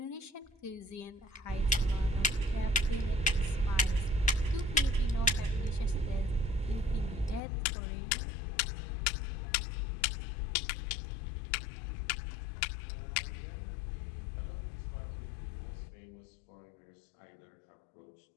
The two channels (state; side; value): drops out; right; at 7.4 s